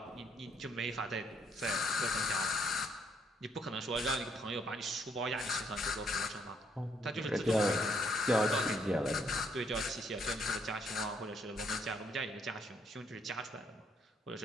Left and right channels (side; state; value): both; normal; correlation 0.70